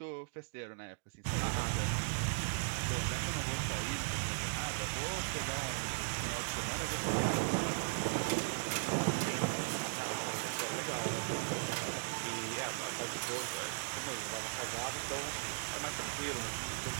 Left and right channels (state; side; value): silent; left; digital silence